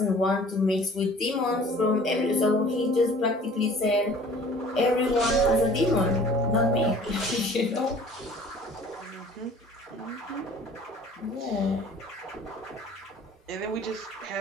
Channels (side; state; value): both; normal; correlation 0.49